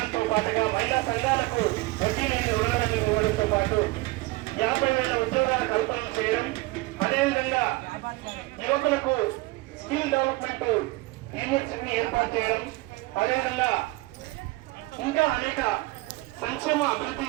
పాటుగా మహిళా సంఘాలకు వడ్డీ లేని రుణాలను ఇవ్వడంతో పాటు 50,000 ఉద్యోగాల కల్పన చేయడం, అదేవిధంగా యువకులకు స్కిల్ డెవలప్మెంట్ యూనివర్సిటీని ఏర్పాటు చేయడం, అదేవిధంగా ఇంకా అనేక సంక్షేమ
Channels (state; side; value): quieter; left; 21.2 dB